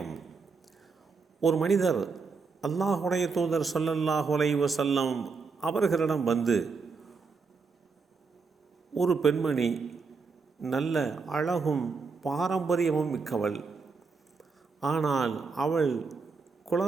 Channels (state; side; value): quieter; left; 4.8 dB